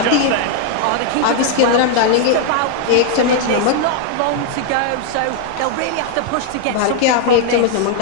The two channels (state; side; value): different; both; correlation 0.00